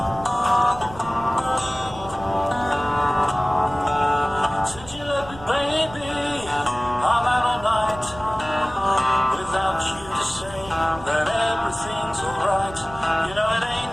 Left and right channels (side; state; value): right; noise; rumble, 17 dB below the sound